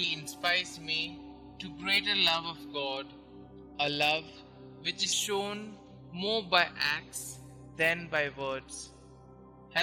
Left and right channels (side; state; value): both; identical; correlation 1.00